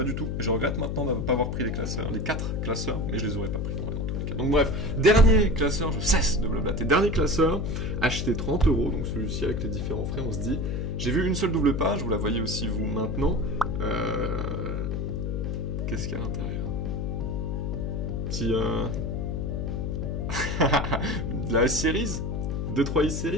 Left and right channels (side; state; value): left; noise; hum, 1 dB below the sound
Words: du tout. Je regrette maintenant de ne pas avoir pris les 4 classeurs, mais je les aurais pas pris, en vrai, dans tous les cas. Donc bref, dernier classeur, je cesse de blablater. Dernier classeur, acheté 30 €, donc celui-ci avec les différents frais, on se dit, j'ai vu une seule double page, vous la voyez aussi vous maintenant. Qu'est-ce qu'il y a à l'intérieur? Petit... de la S-Series? 2-3